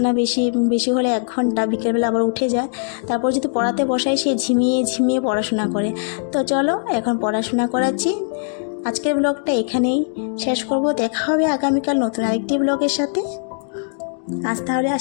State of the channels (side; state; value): right; silent; digital silence